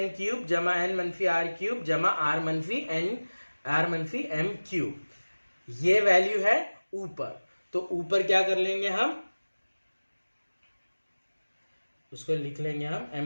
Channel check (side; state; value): both; inverted; correlation -1.00